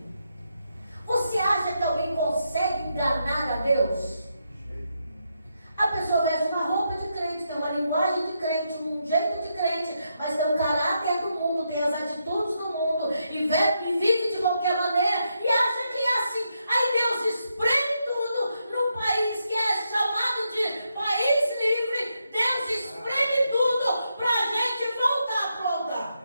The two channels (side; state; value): both; inverted; correlation -0.82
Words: Você acha que alguém consegue enganar a Deus? A pessoa veste uma roupa de crente, tem uma linguagem de crente, um jeito de crente, mas tem o caráter do mundo, tem as atitudes do mundo, e vive de qualquer maneira, e acha que é assim. Aí Deus espreme tudo no país que é chamado de país livre. Deus espreme tudo para a gente voltar a